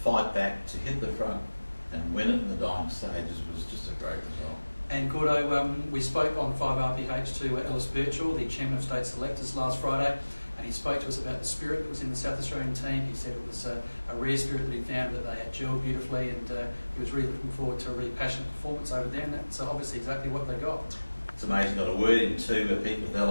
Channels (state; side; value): inverted; both; correlation -1.00